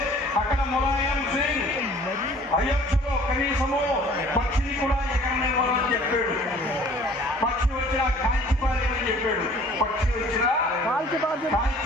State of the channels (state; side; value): normal; both; correlation 0.52